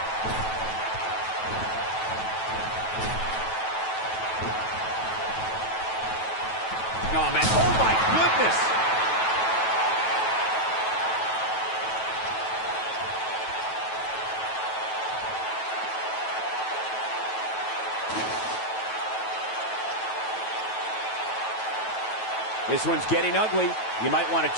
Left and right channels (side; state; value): right; late; 9.2 ms